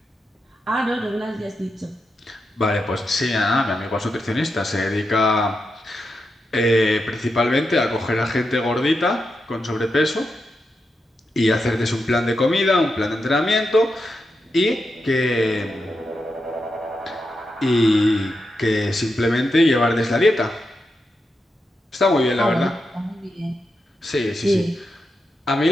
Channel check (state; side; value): normal; both; correlation 0.86